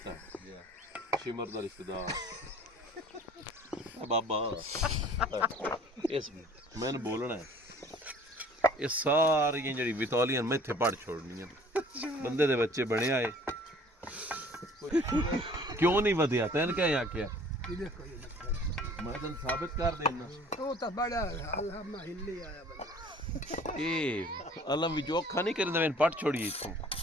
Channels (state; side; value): normal; both; correlation 0.51